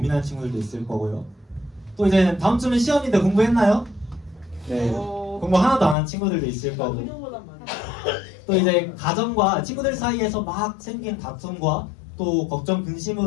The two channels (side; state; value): right; drops out; at 6.0 s